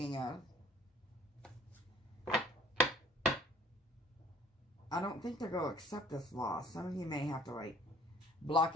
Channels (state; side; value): normal; both; correlation 0.54